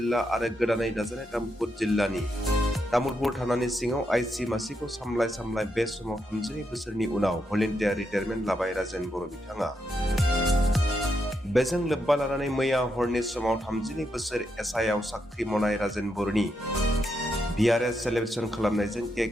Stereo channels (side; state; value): both; normal; correlation 0.81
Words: आरो गोदानै दाजानाय तामुलपुर जिल्लानि तामुलपुर थानानि सिङाव आइसि मासिखौ सामलाय बे समाव 32 बोसोरनि उनाव भलन्टियार रिटायारमेन्ट लाबाय राजेन बर' बिथाङा। बेजों लोब्बा लानानै मैया हरनि समाव 32 बोसोर एसआइआव साख्रि मावनाय राजेन बर'नि बिआरएस सेलेब्रेसन खालामनायजों केक